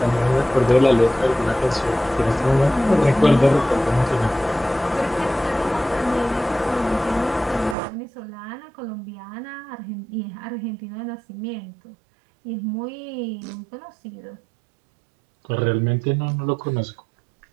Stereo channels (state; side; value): drops out; left; at 7.8 s